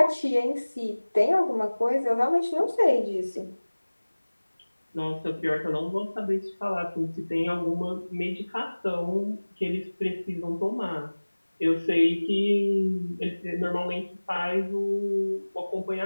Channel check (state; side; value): inverted; both; correlation -1.00